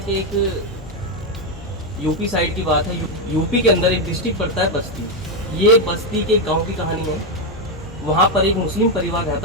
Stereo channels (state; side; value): normal; both; correlation 0.05